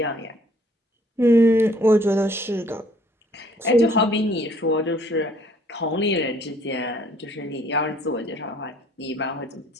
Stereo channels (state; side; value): normal; both; correlation 0.60